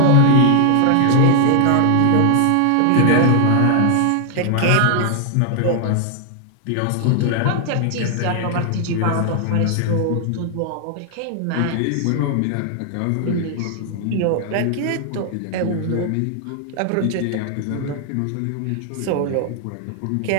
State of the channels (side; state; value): both; different; correlation 0.00